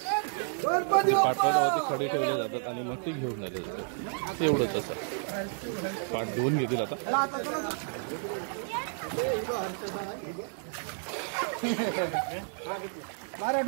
पाठावरती खडे ठेवले जातात आणि मग ते घेऊन झाले जातात. एवढंच असं पाठ 2 घेतील आता.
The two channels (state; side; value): silent; left; 57 dB below the other